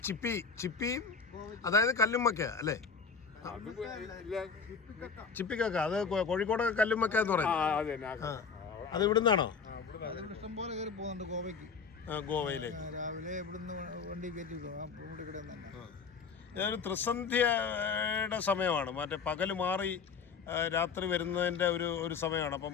ചിപ്പിയും അതായത് കല്ലുമ്മക്ക അല്ലേ? ചിപ്പിക്കക്ക അത് കോഴിക്കോടൊക്കെ കല്ലുമ്മക്ക എന്ന് പറയും. അത് ഇവിടുന്നാണോ? ഇഷ്ടം പോലെ കയറി പോകുന്നുണ്ട് ഗോവയ്ക്ക്. ഗോവയിലേക്ക് രാവിലെ ഇവിടുന്ന് വണ്ടി കയറ്റി ഒരു ത്രിസന്ധ്യയുടെ സമയമാണ്. മറ്റേ പകല് മാറി രാത്രി വരുന്നതിൻ്റെ ഒരു സമയമാണ്. അപ്പോൾ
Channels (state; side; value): quieter; right; 5.5 dB